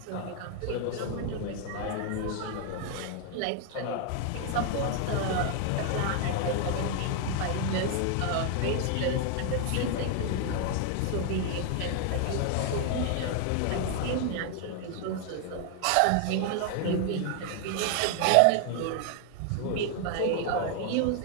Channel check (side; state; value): both; different; correlation 0.00